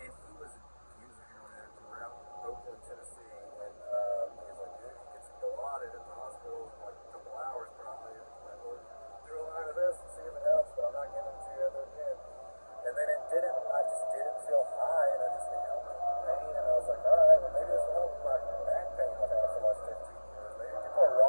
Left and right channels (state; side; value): inverted; both; correlation -1.00